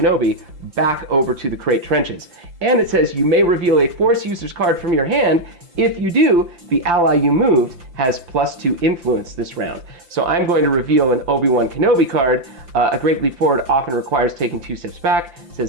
back over to the Crate Trenches. And it says you may reveal a Force user's card from your hand. If you do, the ally you moved has +2 influence this round. So I'm going to reveal an Obi-Wan Kenobi card. A Great Leap Forward often requires taking 2 steps back. It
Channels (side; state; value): left; late; 5.8 ms